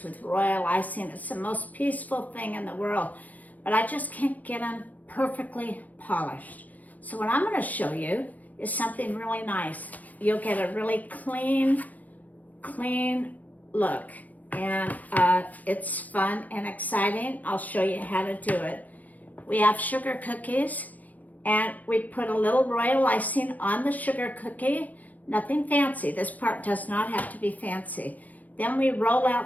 with royal icing. It's the most peaceful thing in the world, but I just can't get them perfectly polished. So what I'm going to show you is something really nice. You'll get a really clean look, and it's fun and exciting. I'll show you how to do it. We have sugar cookies, and we put a little royal icing on the sugar cookie. Nothing fancy. This part does not have to be fancy. Then we roll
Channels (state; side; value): late; right; 0.077 ms